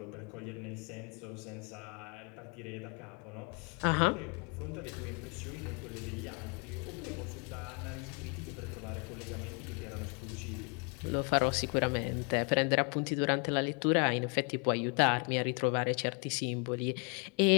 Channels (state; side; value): quieter; right; 35.2 dB